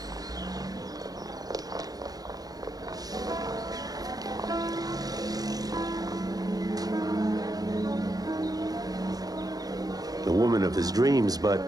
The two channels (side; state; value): left; late; 0.18 ms